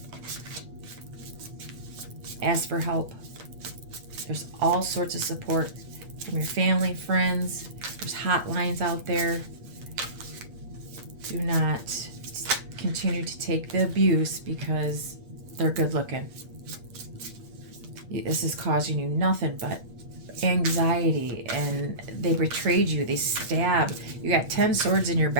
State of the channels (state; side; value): late; left; 8.5 ms